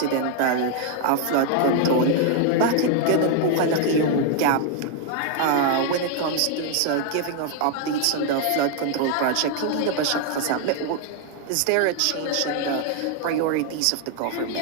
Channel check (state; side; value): different; both; correlation 0.00